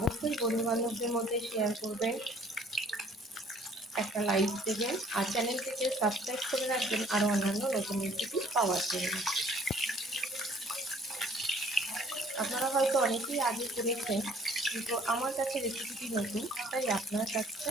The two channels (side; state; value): both; normal; correlation 0.58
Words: বন্ধুবান্ধবদের মধ্যে শেয়ার করবেন, একটা লাইক দেবেন, আর চ্যানেলটিকে সাবস্ক্রাইব করে রাখবেন আরও অন্যান্য নতুন রেসিপি পাওয়ার জন্য। আপনারা হয়তো অনেকেই আগে করেছেন, কিন্তু আমার কাছে রেসিপিটি নতুন, তাই আপনার কাছে